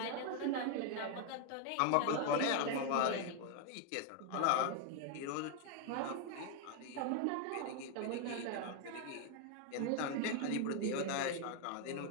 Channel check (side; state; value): both; different; correlation 0.00